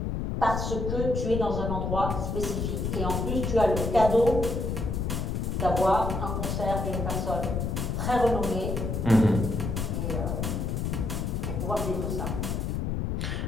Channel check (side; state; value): left; noise; rumble, 1 dB below the sound